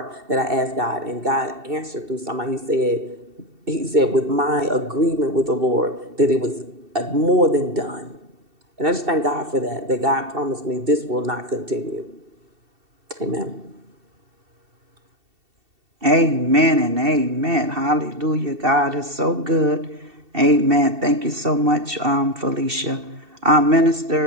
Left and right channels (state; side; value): late; left; 2.7 ms